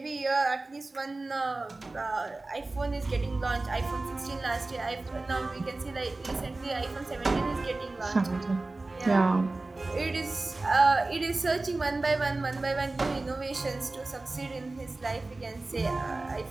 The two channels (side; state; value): left; quieter; 3.2 dB